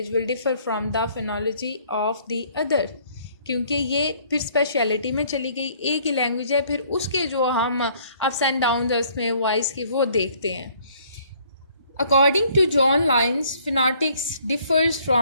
will differ from the phonology of the other, क्योंकि ये फिर स्पेशलिटी में चली गई। एक ही लैंग्वेज है, फिर उसके जो हम अप्स एंड डाउन उसमें वॉइस के वो देखते हैं। According to John Lyons phonetics differs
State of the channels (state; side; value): inverted; both; correlation -0.61